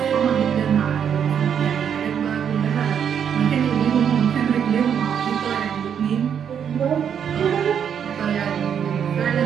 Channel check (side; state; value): left; quieter; 8.1 dB